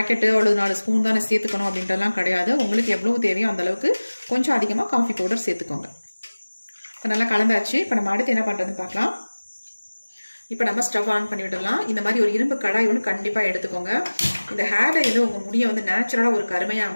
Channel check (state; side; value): inverted; both; correlation -1.00